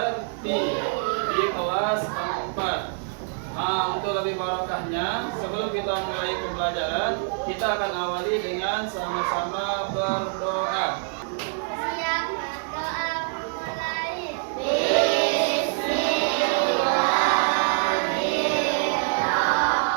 di kelas 4. Untuk lebih barokahnya, sebelum kita mulai pembelajaran, kita akan awali dengan sama-sama berdoa. Siap berdoa mulai.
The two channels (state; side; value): silent; left; 60 dB below the other